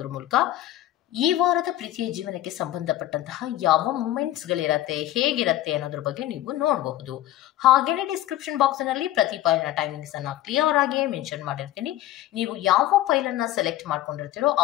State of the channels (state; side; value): quieter; right; 14.2 dB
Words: ಮೂಲಕ ಈ ವಾರದ ಪ್ರೀತಿಯ ಜೀವನಕ್ಕೆ ಸಂಬಂಧಪಟ್ಟಂತಹ ಯಾವ ಮೂಮೆಂಟ್ಸ್ ಗಳಿರತ್ತೆ, ಹೇಗಿರತ್ತೆ ಅನ್ನೋದ್ರ ಬಗ್ಗೆ ನೀವು ನೋಡಬಹುದು. ಹಾಗೇನೆ ಡಿಸ್ಕ್ರಿಪ್ಷನ್ ಬಾಕ್ಸ್ ನಲ್ಲಿ ಪ್ರತಿ ಫೈಲ್ನ ಟೈಮಿಂಗ್ಸ್ ಅನ್ನ ಕ್ಲಿಯರ್ ಆಗಿ ಮೆನ್ಷನ್ ಮಾಡಿರ್ತೀನಿ. ನೀವು ಯಾವ ಫೈಲ್ ಅನ್ನ ಸೆಲೆಕ್ಟ್ ಮಾಡ್ಕೊಂಡಿರ್ತೀರೋ ಆ